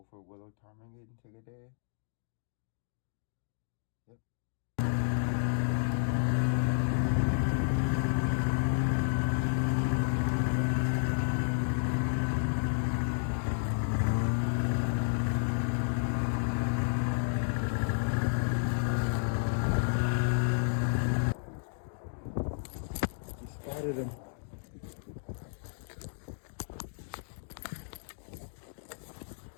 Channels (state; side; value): silent; right; digital silence